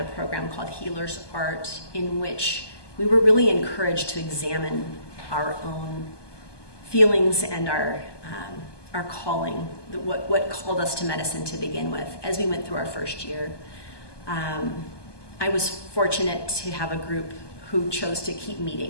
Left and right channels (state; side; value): late; right; 1.2 ms